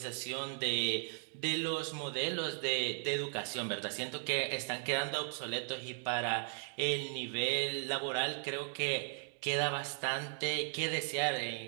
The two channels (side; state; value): left; silent; 53 dB below the other